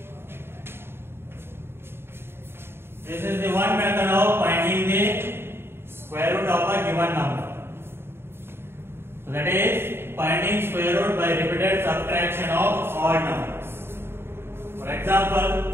This is the one method of finding the square root of a given number. So that is finding square root by repeated subtraction of odd numbers. For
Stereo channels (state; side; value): late; left; 0.11 ms